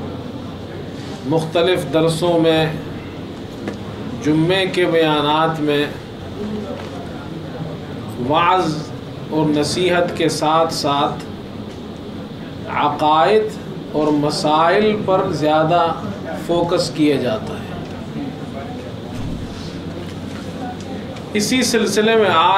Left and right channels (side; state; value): both; identical; correlation 1.00